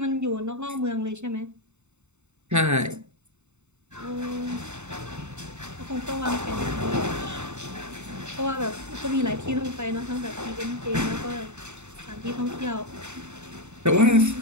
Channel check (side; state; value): left; late; 0.83 ms